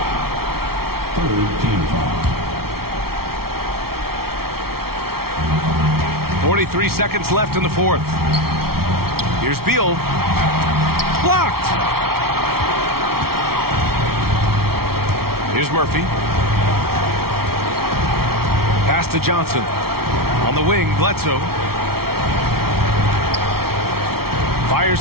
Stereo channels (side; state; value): left; late; 0.94 ms